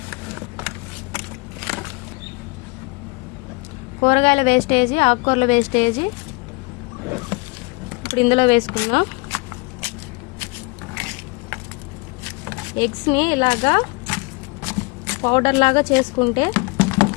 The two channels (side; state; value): right; quieter; 28.8 dB